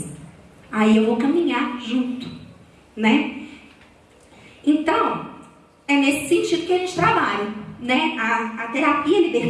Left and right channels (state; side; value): identical; both; correlation 1.00